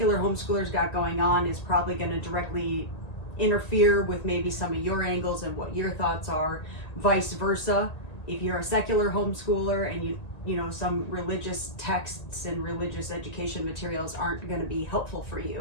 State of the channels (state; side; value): late; right; 1.9 ms